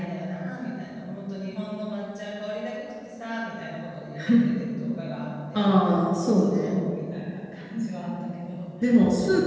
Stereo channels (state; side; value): identical; both; correlation 1.00